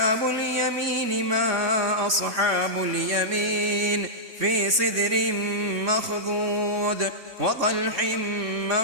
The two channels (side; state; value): left; late; 3.6 ms